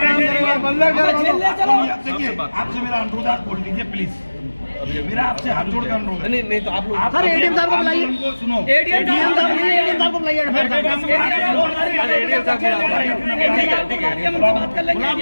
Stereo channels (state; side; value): inverted; both; correlation -1.00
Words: अल्लाह करवा दो। देखिए आपसे मेरा अनुरोध आप बोल दीजिए प्लीज, मेरा आपसे हाथ जोड़ कर अनुरोध है। नहीं तो आप लोग सर एडीएम साहब को बुलाइए, सुनो एडीएम साहब को बुलाइए।